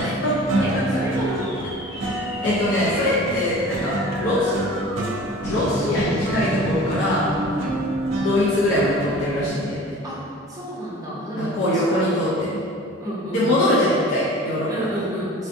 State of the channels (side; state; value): both; normal; correlation 0.42